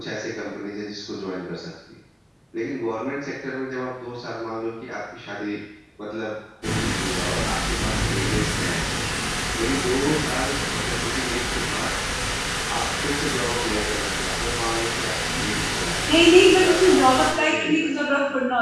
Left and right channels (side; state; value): both; identical; correlation 1.00